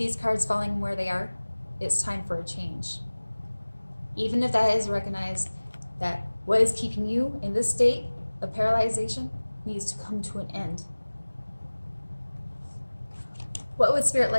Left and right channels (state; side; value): inverted; both; correlation -1.00